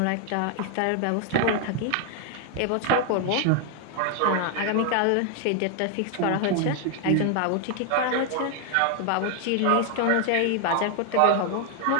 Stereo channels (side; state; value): both; different; correlation 0.00